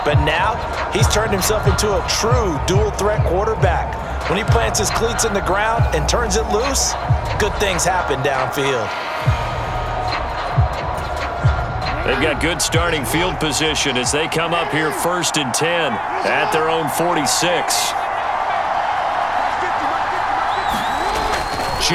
But now, he's turned himself into a true dual-threat quarterback. When he plants his cleats in the ground and turns it loose, good things happen downfield. They've got good starting field position as they come up here 1st and 10 at their own 46.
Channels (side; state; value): both; identical; correlation 1.00